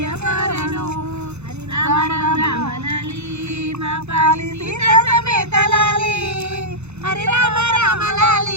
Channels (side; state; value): left; late; 0.81 ms